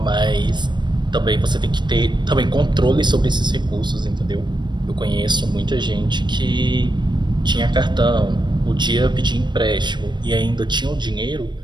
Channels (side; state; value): left; late; 0.22 ms